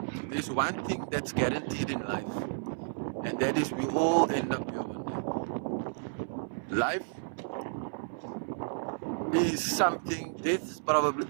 There's one thing that's guaranteed in life, and that is we all end up here one day. Life is something. Death is probably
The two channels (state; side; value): silent; left; 57 dB below the other